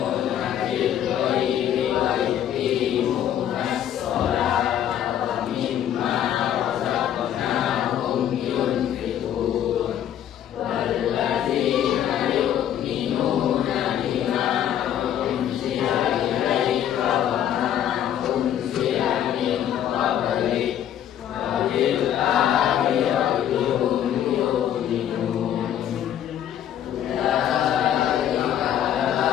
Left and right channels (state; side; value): quieter; right; 10.5 dB